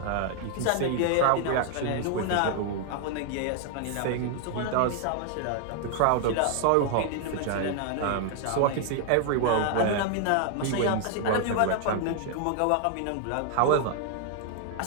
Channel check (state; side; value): different; both; correlation 0.00